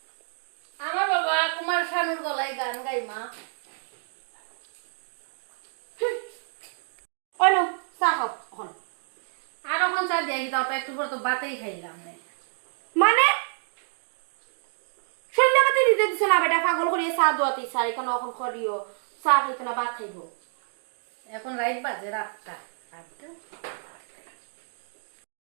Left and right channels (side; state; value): left; silent; digital silence